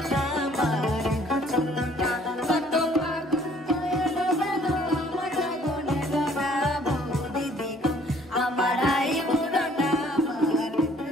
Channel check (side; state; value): both; normal; correlation 0.59